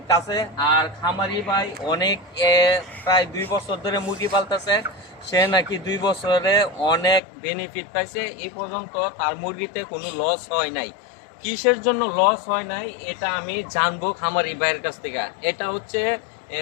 কাছে। আর খামারি ভাই অনেক প্রায় 2 বছর ধরে মুরগি পালতেছে। সে নাকি 2 বছরে অনেক বেনিফিট পাইছে। এই পর্যন্ত তার মুরগিতে কোনো লস হয় নাই। কিসের জন্য লস হয় নাই এটা আমি জানবো খামারি ভাইয়ের কাছ থেকে। এটা হচ্ছে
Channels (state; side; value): drops out; right; at 7.2 s